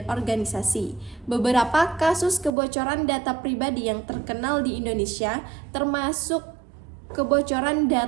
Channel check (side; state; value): left; drops out; at 2.5 s